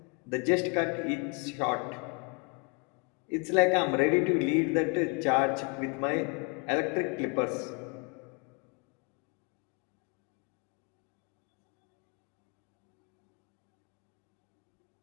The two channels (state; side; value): quieter; right; 34.1 dB